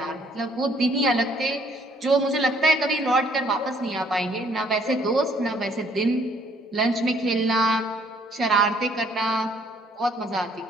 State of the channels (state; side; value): normal; both; correlation 0.63